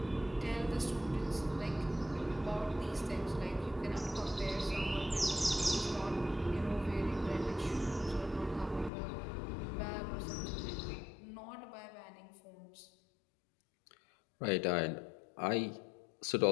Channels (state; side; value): drops out; right; at 8.9 s